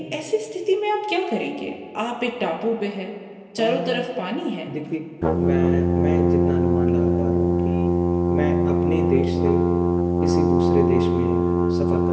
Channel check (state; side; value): identical; both; correlation 1.00